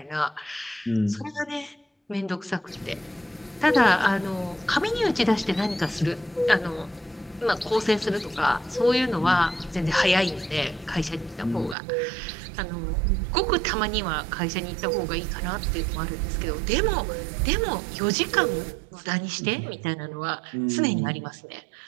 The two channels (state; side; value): drops out; left; at 11.8 s